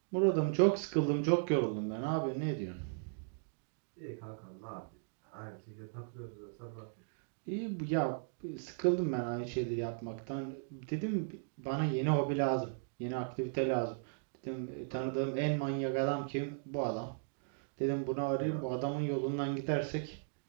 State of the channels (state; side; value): silent; left; digital silence